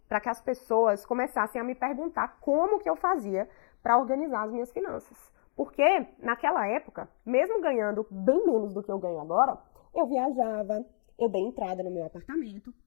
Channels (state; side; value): silent; right; digital silence